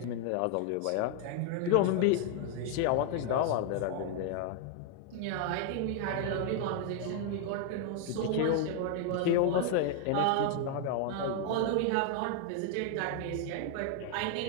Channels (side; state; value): both; different; correlation 0.00